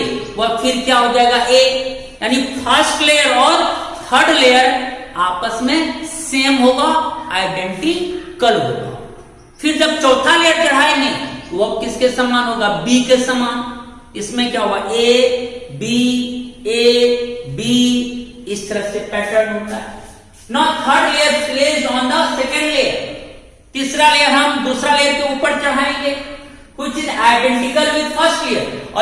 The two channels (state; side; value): identical; both; correlation 1.00